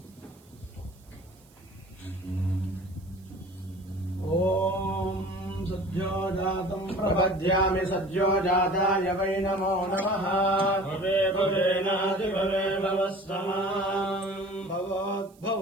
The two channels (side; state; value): right; noise; hiss, 29 dB below the sound